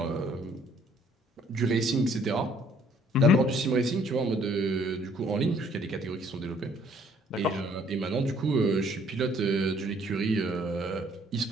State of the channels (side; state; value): both; normal; correlation 0.61